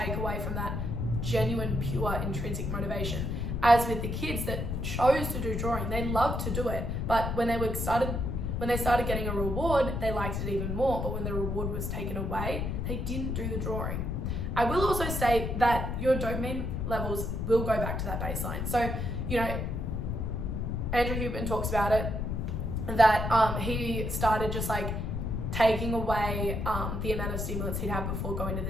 away from that genuine, pure, intrinsic motivation. As with the kids that chose to do drawing, they loved to do it, but when they started getting a reward, they liked it even more. But when the reward was taken away, they didn't do the drawing. I will also say that your dopamine levels will go back to that baseline. So, you know, Andrew Huberman talks about it, that he started just like taking away the amount of stimulants he'd have before going to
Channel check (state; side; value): noise; left; rumble, 2 dB below the sound